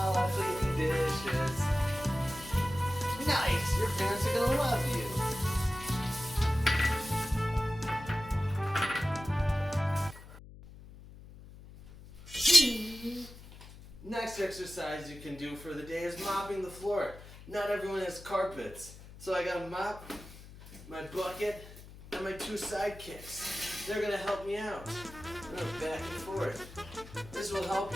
la, clean dishes. Nice, your parents are going to love you. Next exercise you can do for the day is mopping the floor. Not everyone has carpets. So I got a mop, my bucket, and my 2 sidekicks. They're going to help me out. I'm going back and forth. This will help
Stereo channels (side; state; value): left; noise; hum, 17 dB below the sound